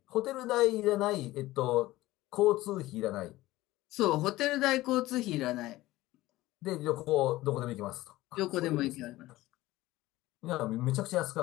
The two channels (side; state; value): right; quieter; 17.4 dB